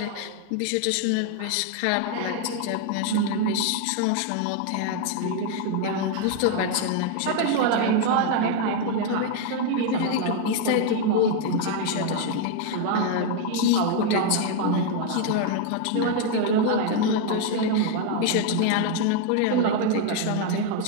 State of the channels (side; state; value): both; different; correlation 0.01